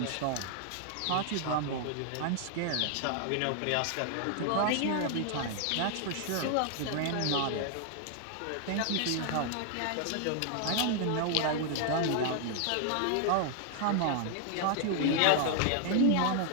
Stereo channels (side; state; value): both; different; correlation 0.00